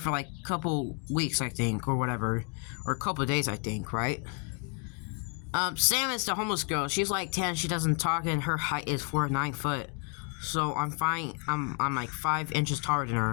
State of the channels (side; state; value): right; quieter; 35.9 dB